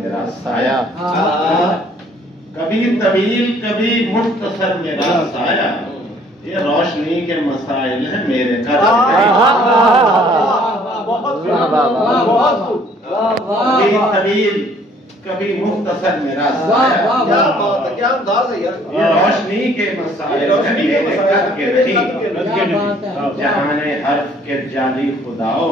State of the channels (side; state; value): both; normal; correlation 0.59